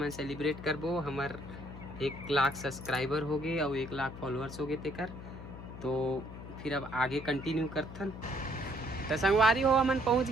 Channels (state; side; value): noise; left; hum, 12 dB below the sound